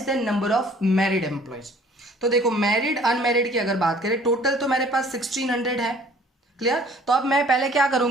than number of married employees. तो देखो मैरिड अनमैरिड की अगर बात करें, टोटल तो मेरे पास 1600 है। क्लियर? तो अब मैं पहले क्या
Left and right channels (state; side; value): normal; both; correlation 0.54